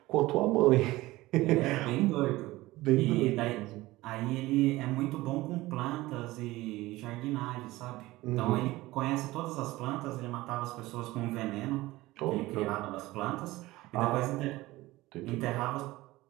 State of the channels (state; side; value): quieter; left; 18.7 dB